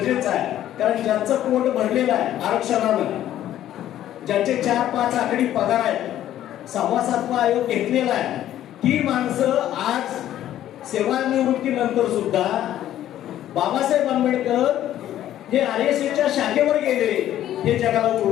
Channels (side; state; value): right; quieter; 12.2 dB